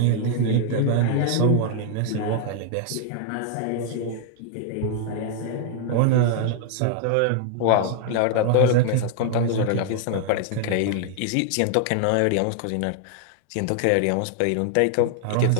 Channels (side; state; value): both; different; correlation 0.00